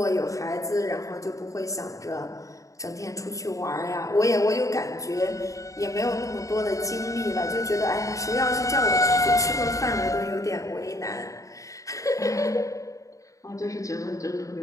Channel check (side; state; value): right; late; 0.16 ms